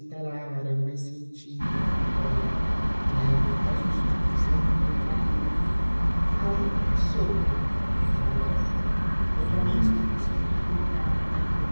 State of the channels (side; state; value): both; inverted; correlation -1.00